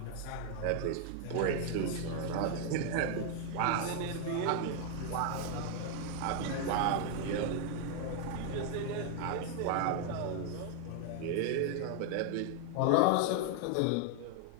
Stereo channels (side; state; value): both; different; correlation 0.00